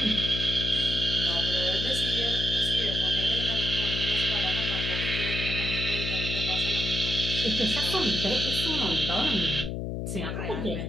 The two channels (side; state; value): left; noise; hum, 3 dB below the sound